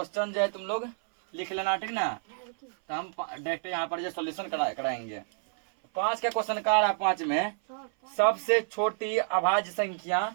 जो है तुम लोग लिख लेना, ठीक ना। तो हम डायरेक्ट यहाँ पर जो सॉल्यूशन कराएंगे। 5 का क्वेश्चन कह रहा है। 5 में सबसे छोटी अभाज्य संख्या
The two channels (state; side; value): silent; left; 57 dB below the other